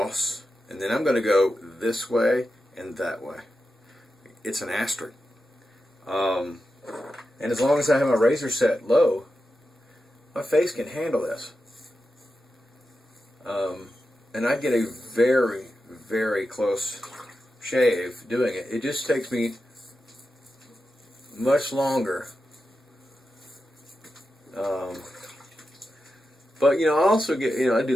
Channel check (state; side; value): normal; both; correlation 0.90